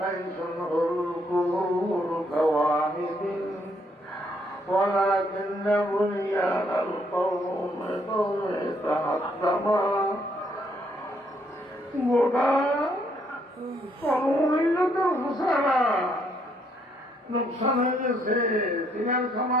হুল কুহুর কাওয়াহিদিন ولكن بنيان القوم تهدم গোটা সম্মিলিত ঘোষণা নোকসান হয়ে গেছে। তিনার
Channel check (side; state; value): both; normal; correlation 0.71